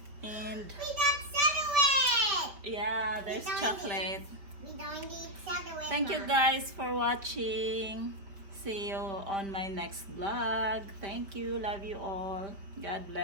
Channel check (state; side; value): late; left; 5.0 ms